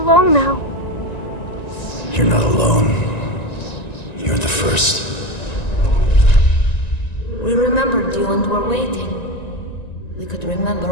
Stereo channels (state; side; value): late; right; 1.9 ms